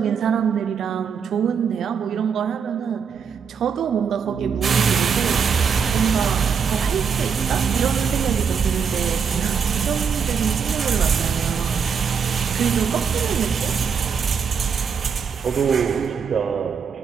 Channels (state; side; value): quieter; left; 6.5 dB